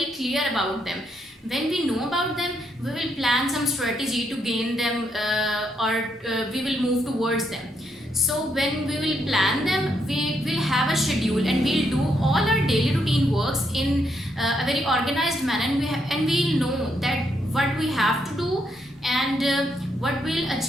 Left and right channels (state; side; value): normal; both; correlation 0.77